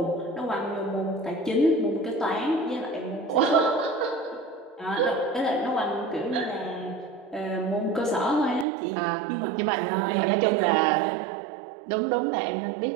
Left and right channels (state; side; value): drops out; left; at 8.7 s